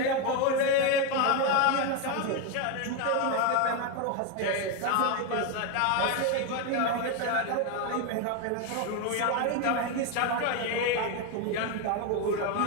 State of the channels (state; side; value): different; both; correlation 0.02